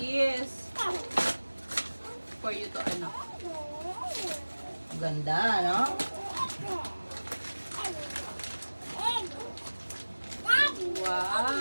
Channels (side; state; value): both; inverted; correlation -1.00